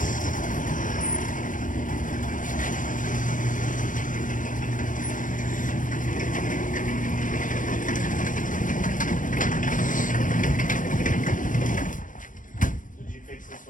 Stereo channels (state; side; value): late; right; 0.38 ms